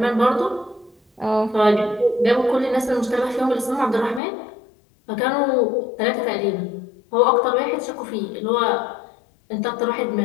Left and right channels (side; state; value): right; drops out; at 4.2 s